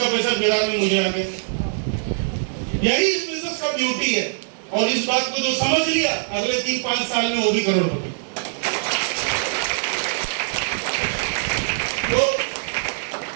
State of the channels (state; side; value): silent; left; digital silence